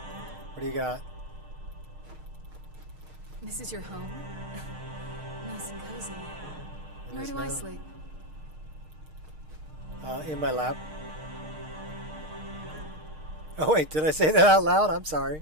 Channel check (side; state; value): left; late; 6.5 ms